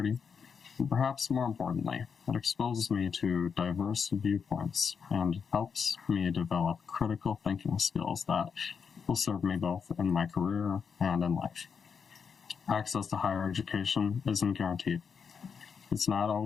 and perhaps more importantly, it exposes me to diverse viewpoints and helps me develop critical thinking skills that will serve me both in my career and in life. Access to higher education isn't guaranteed. It's not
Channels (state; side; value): quieter; right; 6.3 dB